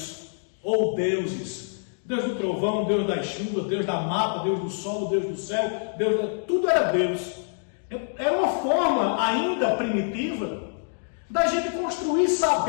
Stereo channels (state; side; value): silent; right; digital silence